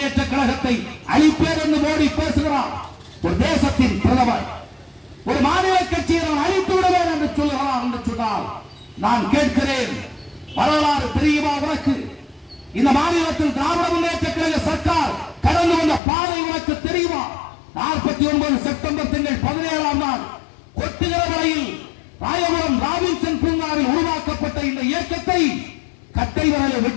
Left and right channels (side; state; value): right; drops out; at 16.0 s